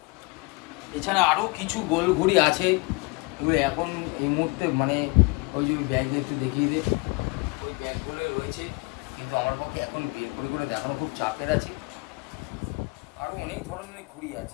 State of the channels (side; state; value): right; quieter; 27.4 dB